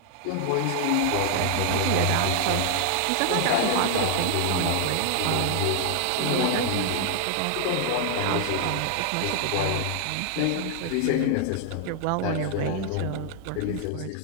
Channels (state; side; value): different; both; correlation 0.00